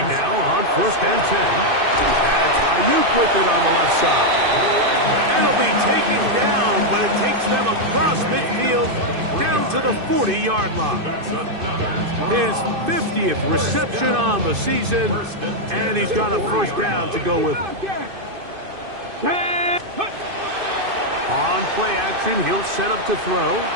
now on 1st and 10. That's Ayuk with it on the left side. It'll be taken down, but it takes them across midfield down to the 40-yard line. His 50th reception on the season, and he's got a first down to go with it. On play action, he'll set up to throw.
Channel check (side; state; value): left; late; 2.5 ms